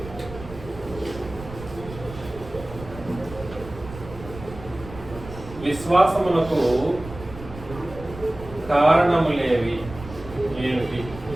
విశ్వాసమునకు కారణములేవి ఏమిటి?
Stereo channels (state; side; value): noise; right; rumble, 14 dB below the sound